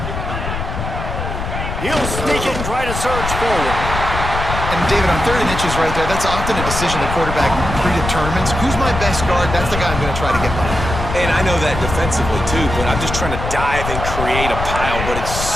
He'll sneak it and try to surge forward. And David, on 3rd and inches right there, that's often a decision the quarterback predetermines. Who's my best guard? That's the guy I'm going to try to get by. And I know that defensively too, but I'm just trying to dive and create a pile, but it's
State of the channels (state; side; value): noise; left; rumble, 5 dB below the sound